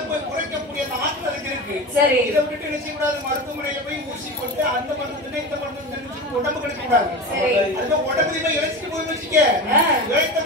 குறைக்கக்கூடிய அந்த ஆற்றல் அதுக்கு இருக்கு. சரி. இதை விட்டு என்ன செய்யக்கூடாது? மருத்துவமனையில போய் ஊசி போட்டு அந்த மருந்து இந்த மருந்து உடம்பு கிடைக்க கூடாது. அதுக்கு உடம்புல போய் இழைச்சிட்டு போய் வச்சுக்க.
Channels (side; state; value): both; normal; correlation 0.27